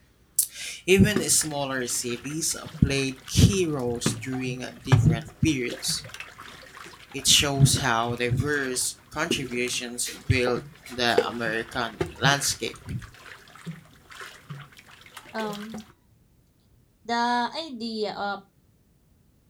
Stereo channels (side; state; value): both; identical; correlation 1.00